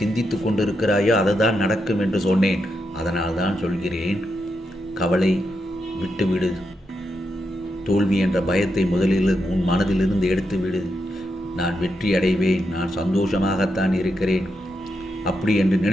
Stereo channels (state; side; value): normal; both; correlation 0.84